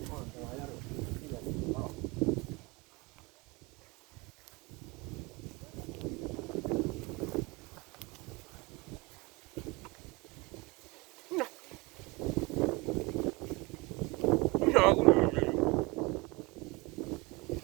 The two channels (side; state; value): left; quieter; 25.0 dB